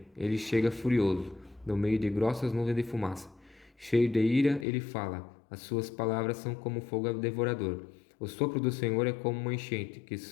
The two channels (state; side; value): drops out; right; at 4.7 s